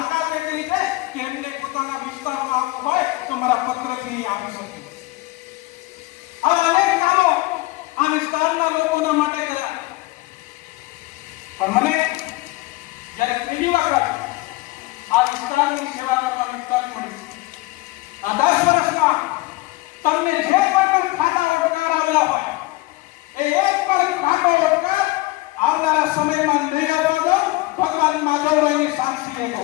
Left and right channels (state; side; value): quieter; right; 20.8 dB